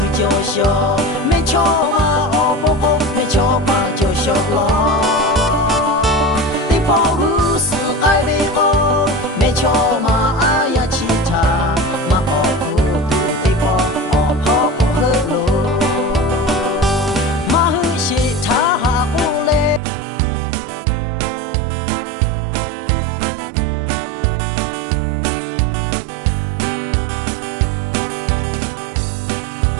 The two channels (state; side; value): drops out; left; at 19.8 s